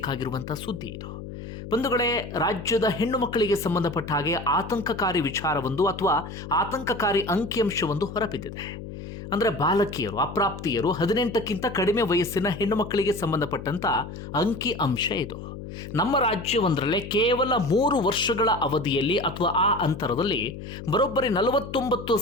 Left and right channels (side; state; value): left; noise; hum, 10 dB below the sound